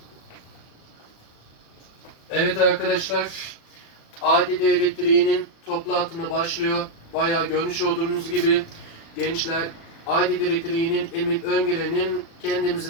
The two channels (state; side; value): late; right; 36 ms